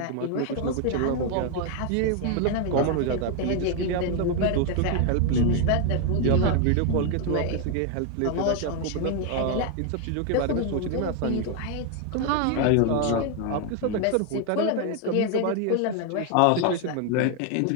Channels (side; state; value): both; different; correlation 0.01